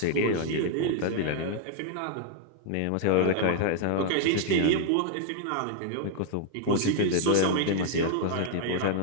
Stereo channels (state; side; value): different; both; correlation 0.00